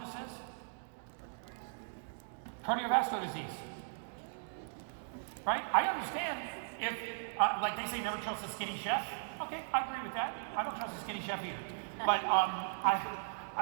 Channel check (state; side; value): silent; left; digital silence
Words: is cardiovascular disease. Right? I understand. If, like they say, never trust a skinny chef. Okay, I agree with that. I don't trust a skinny chef either. But